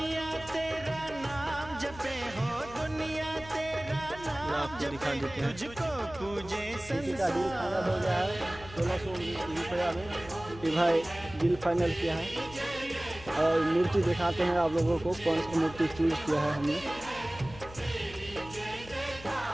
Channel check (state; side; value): noise; left; hum, 17 dB below the sound